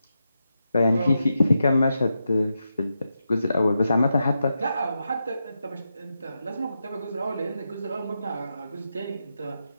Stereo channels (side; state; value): both; inverted; correlation -0.87